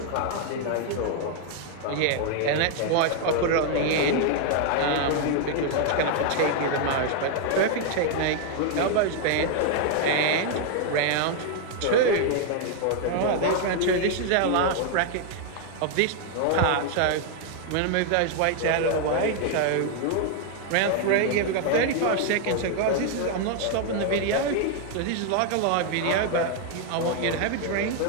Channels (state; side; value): different; both; correlation 0.00